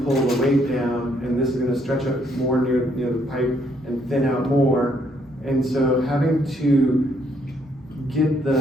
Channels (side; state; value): both; normal; correlation 0.70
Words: pull the weight down, and this is going to stretch up more near the pipe and thin out more. And so having to get